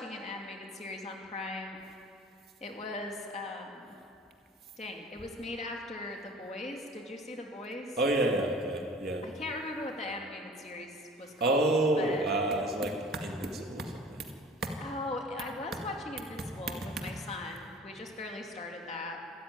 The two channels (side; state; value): both; normal; correlation 0.45